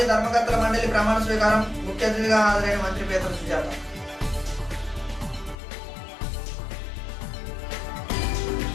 ధర్మకర్తల మండలి ప్రమాణ స్వీకారం. ముఖ్య అతిథిగా హాజరైన మంత్రి పేతల సుజాత.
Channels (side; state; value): right; drops out; at 5.6 s